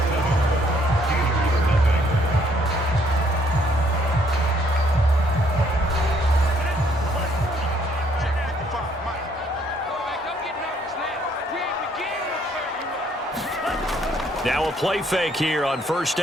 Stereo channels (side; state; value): both; normal; correlation 0.66